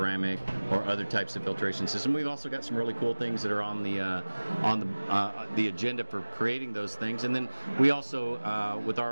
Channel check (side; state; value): both; inverted; correlation -1.00